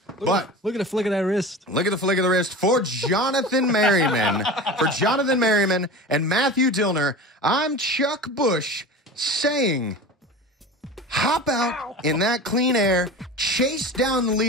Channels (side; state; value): both; normal; correlation 0.33